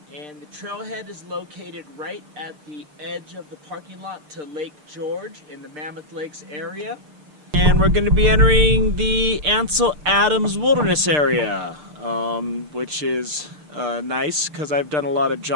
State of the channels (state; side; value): late; left; 6.6 ms